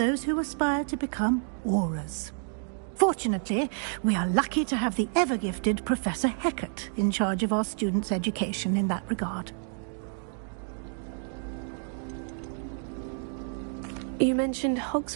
who aspire to become Aurors. Fortunately, we are lucky to have the ever-gifted Professor Hecat in charge of our students' education in that regard. You mentioned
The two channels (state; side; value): silent; left; 56 dB below the other